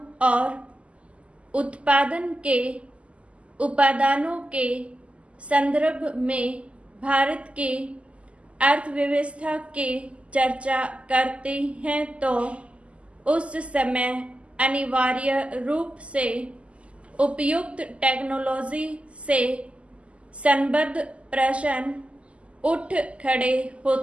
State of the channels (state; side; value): late; left; 0.059 ms